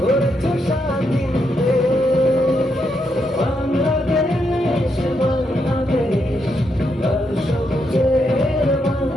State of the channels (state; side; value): normal; both; correlation 0.80